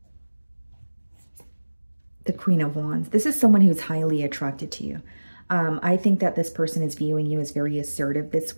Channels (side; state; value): both; inverted; correlation -1.00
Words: The Queen of Wands. This is someone who's highly attracted to you. I think that this person is viewing you as very assertive this